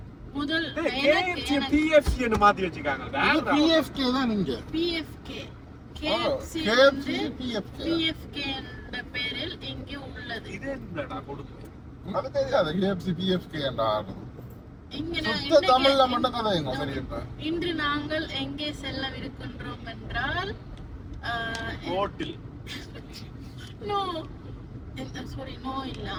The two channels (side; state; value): both; identical; correlation 1.00